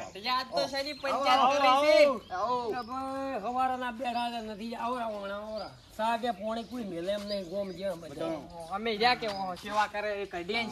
યાદ તો શની પંચાયત કરી છે હવારાના બેઠા નથી આવરા સાગે પોણે કોઈ મેલે એમ નહીં ગોમ જે અમે જ્યાં કે સેવા કરે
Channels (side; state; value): both; identical; correlation 1.00